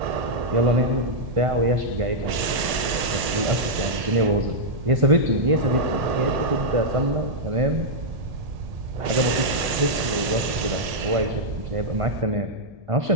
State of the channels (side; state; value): left; late; 1.8 ms